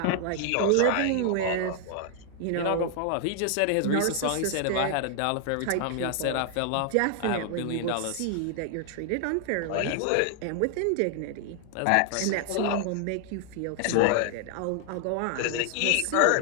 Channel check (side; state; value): both; different; correlation 0.00